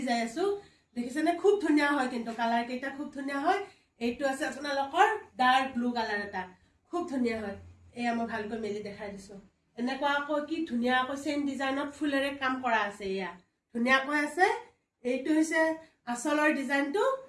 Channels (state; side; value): identical; both; correlation 1.00